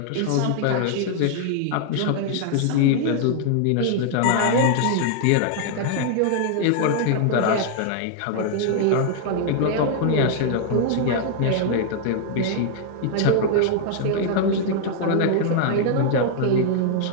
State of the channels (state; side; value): different; both; correlation -0.01